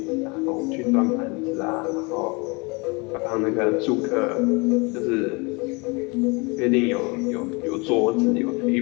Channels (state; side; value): quieter; right; 28.7 dB